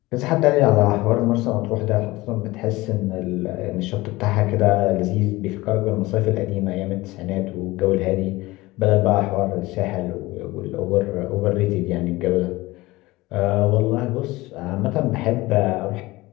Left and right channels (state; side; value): quieter; right; 20.0 dB